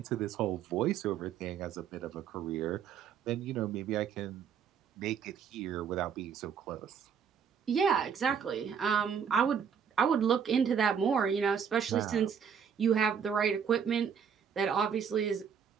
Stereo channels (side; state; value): left; quieter; 7.3 dB